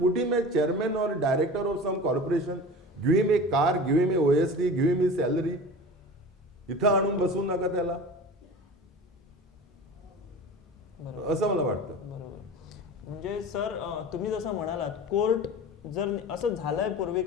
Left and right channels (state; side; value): normal; both; correlation 0.35